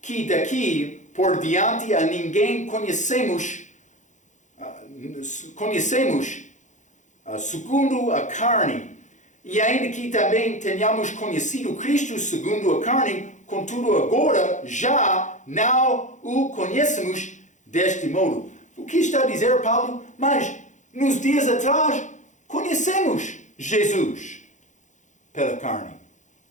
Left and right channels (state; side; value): late; right; 0.35 ms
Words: que daqui por diante a ninguém conhecemos segundo a carne, e ainda que também tenhamos conhecido Cristo segundo a carne, contudo agora já não o conhecemos deste modo. O que está a dizer Paulo? Mas nos dias atrás conhecemos Jesus pela carne,